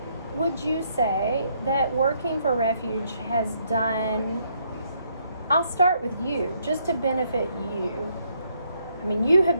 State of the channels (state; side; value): inverted; both; correlation -0.72